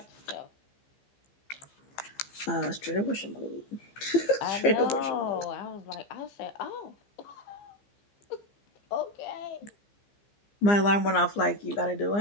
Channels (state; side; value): late; right; 15 ms